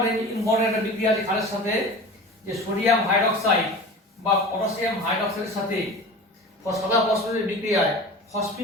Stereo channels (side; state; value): both; normal; correlation 0.35